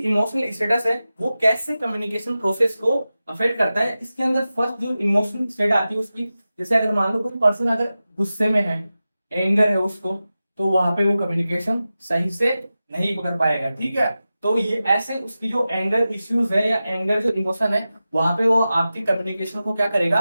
इमोशनल स्टेटस है वो कैसे कम्युनिकेशन प्रोसेस को अफेक्ट करता है। इसके अंदर फर्स्ट जो इमोशनल स्टेट आती है उसकी, जैसे अगर मान लो कोई पर्सन अगर गुस्से में है, एंगर है उसको, तो वहां पे वो कम्युनिकेशन सही से नहीं कर पाएगा, ठीक है। तो ये ऐसे उसकी जो एंगर इश्यूज है या एंगर जो इमोशन है, वहां पे वो आपकी कम्युनिकेशन को क्या करेगा,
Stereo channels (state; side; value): inverted; both; correlation -0.94